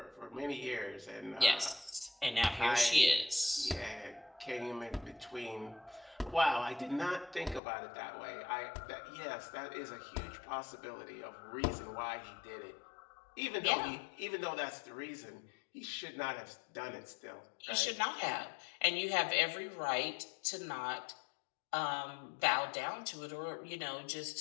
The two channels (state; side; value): drops out; right; at 7.6 s